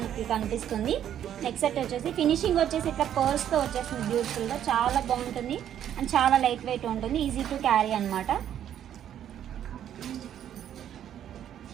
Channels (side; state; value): left; quieter; 10.3 dB